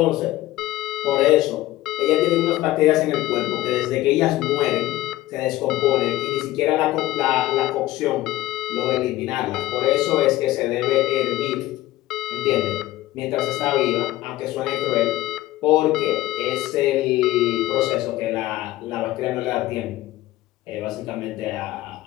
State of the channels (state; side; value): quieter; right; 16.1 dB